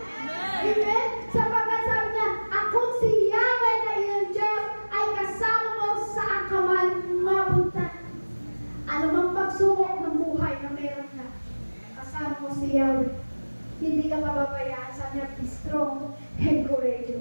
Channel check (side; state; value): both; inverted; correlation -1.00